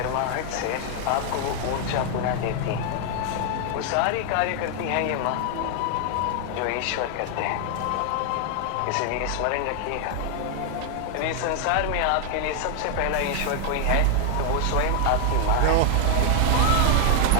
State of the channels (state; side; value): different; both; correlation 0.00